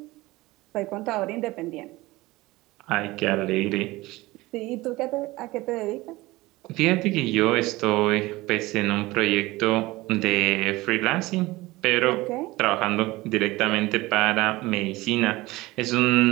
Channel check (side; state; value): left; quieter; 19.9 dB